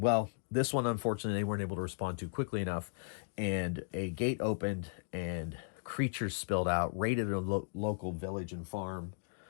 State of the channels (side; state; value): right; silent; digital silence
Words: this one, unfortunately, they weren't able to respond to quickly enough, and a gate opened and creatures spilled out, raided a local village and farm,